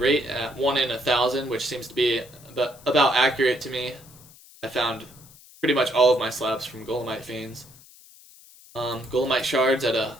at 1 in 1,000, which seems to be about accurate to me. I found pretty much all of my slabs from Golemite Fiends. Golemite shards at a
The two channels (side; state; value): left; noise; hiss, 23 dB below the sound